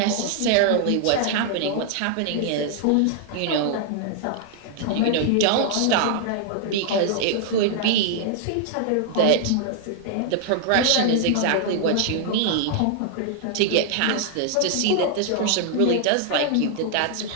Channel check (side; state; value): both; different; correlation -0.01